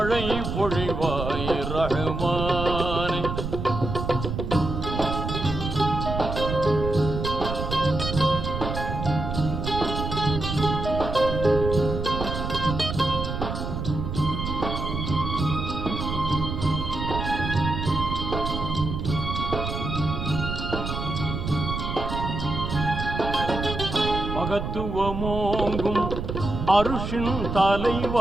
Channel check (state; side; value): noise; right; rumble, 4 dB below the sound